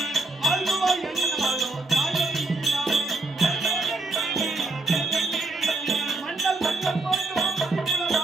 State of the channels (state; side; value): quieter; left; 3.1 dB